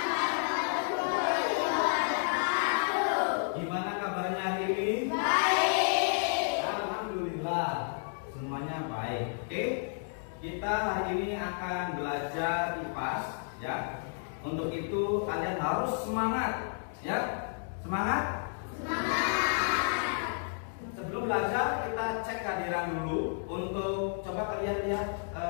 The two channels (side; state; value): right; silent; digital silence